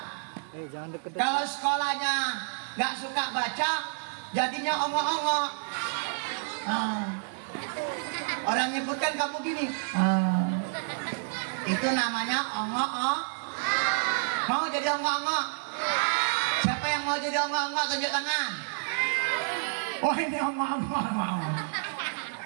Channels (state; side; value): silent; left; digital silence